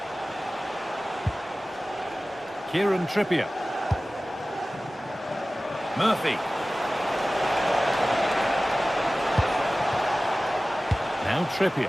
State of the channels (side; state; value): both; normal; correlation 0.97